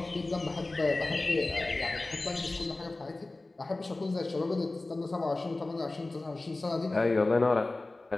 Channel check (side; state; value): right; quieter; 3.0 dB